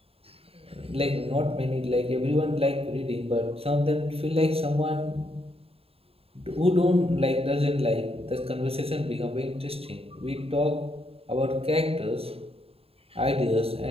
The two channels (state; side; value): late; left; 0.28 ms